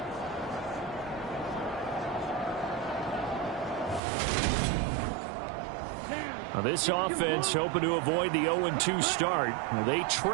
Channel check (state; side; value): drops out; left; at 4.0 s